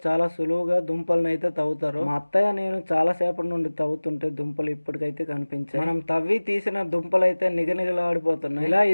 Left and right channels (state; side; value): inverted; both; correlation -1.00